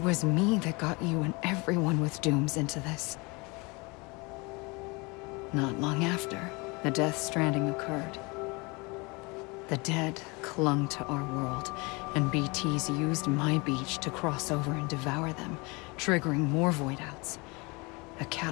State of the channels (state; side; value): quieter; right; 27.3 dB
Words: me that got you and everyone with dooms into this. Not long after, the Death Stranding occurred. The dead clung to our world, and BTs used my beach to cross over and devour them, triggering more void outs. A